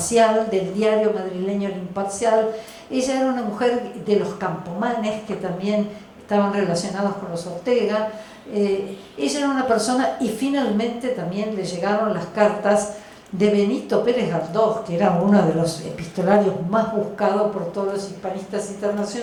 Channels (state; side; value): identical; both; correlation 1.00